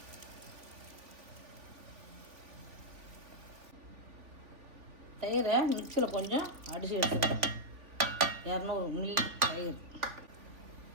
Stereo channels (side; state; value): left; late; 3.5 ms